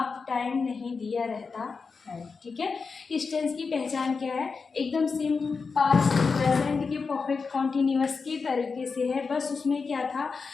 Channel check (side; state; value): right; quieter; 4.9 dB